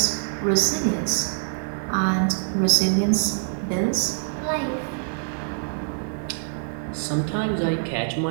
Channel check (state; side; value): silent; left; digital silence